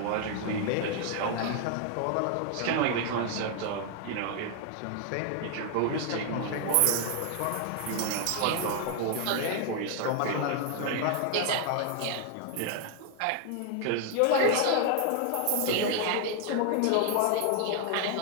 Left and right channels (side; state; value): both; different; correlation 0.00